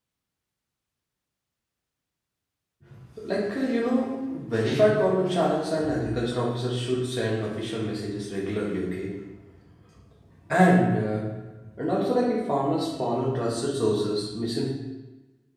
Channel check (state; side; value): identical; both; correlation 1.00